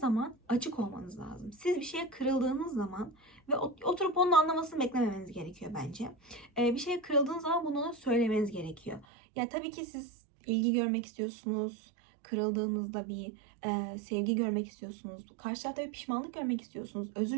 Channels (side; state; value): left; drops out; at 9.1 s